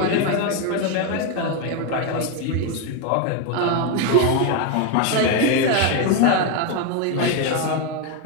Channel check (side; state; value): both; different; correlation 0.02